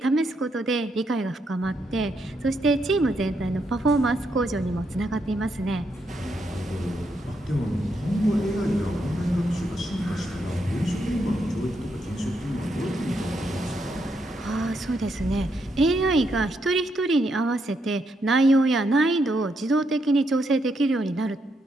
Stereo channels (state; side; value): normal; both; correlation 0.79